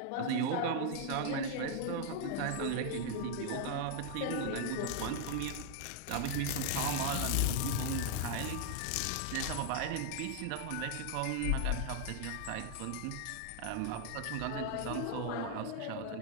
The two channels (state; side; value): different; both; correlation 0.00